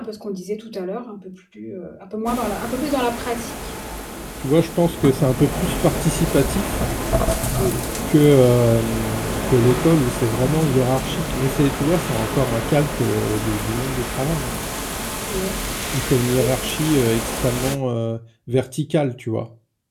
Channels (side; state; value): both; identical; correlation 1.00